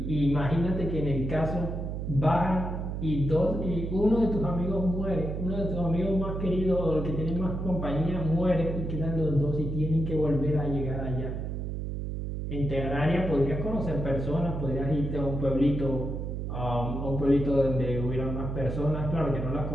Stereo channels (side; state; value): right; noise; hum, 4 dB below the sound